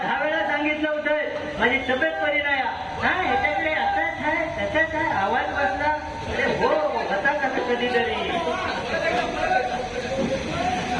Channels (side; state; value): both; identical; correlation 1.00